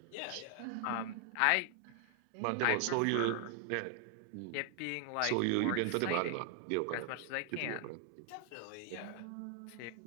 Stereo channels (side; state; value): both; different; correlation 0.00